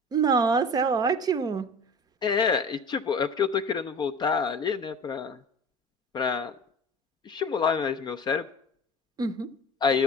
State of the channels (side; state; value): both; normal; correlation 0.38